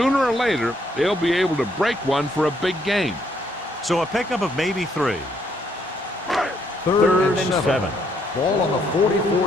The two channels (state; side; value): normal; both; correlation 0.71